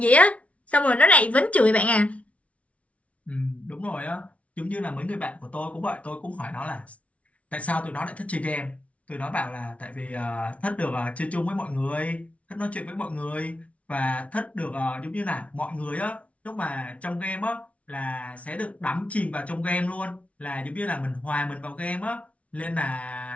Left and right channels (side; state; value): right; late; 0.065 ms